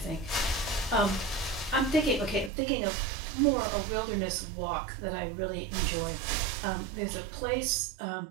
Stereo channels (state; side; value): drops out; left; at 2.5 s